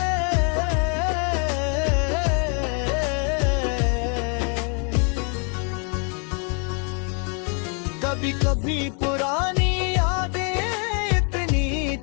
कभी कभी पुरानी यादें इतनी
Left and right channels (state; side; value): quieter; right; 38.5 dB